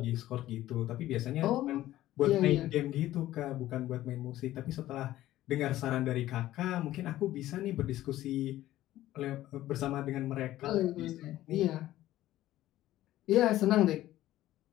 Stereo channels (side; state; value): right; quieter; 14.6 dB